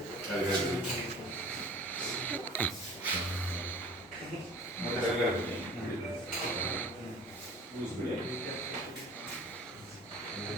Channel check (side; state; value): both; normal; correlation 0.45